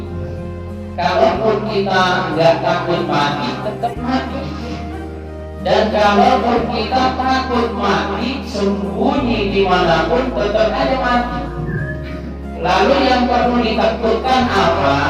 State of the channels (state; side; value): identical; both; correlation 1.00